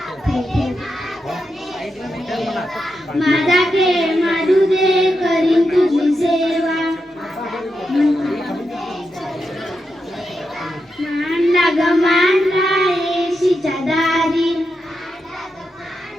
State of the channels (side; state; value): both; normal; correlation 0.86